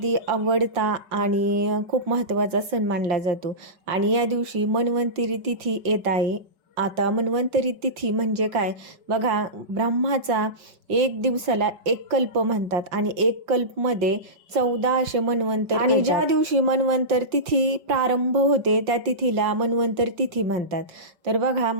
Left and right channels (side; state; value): left; late; 5.3 ms